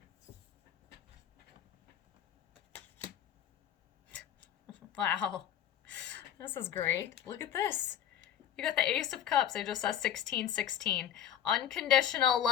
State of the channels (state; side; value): quieter; right; 10.3 dB